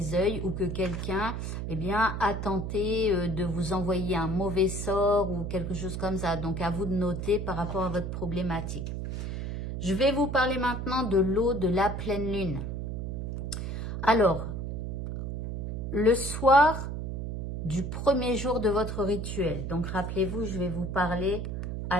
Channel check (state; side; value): noise; right; hum, 4 dB below the sound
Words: œil ou que quelqu'un a tenté de vous envoyer un mauvais sort ou quelque chose comme ça. Donc à vous de noter par rapport à votre problématique. Je vais vous parler maintenant de l'eau de la pleine lune. Alors, le soir du premier jour de votre rituel. Donc, rappelez-vous, je vais vous parler à